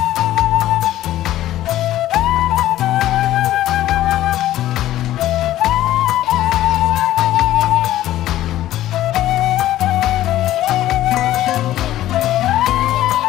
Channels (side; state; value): right; quieter; 13.9 dB